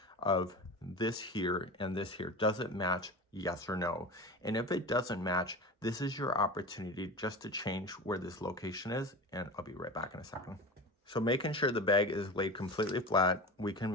of this here and this here. Does it match? Yes or no? And if it doesn't match, this is your opportunity just to change where this location is, and I'll be right back in a second. So making sure the bag is laid completely flat, we can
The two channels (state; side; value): normal; both; correlation 0.31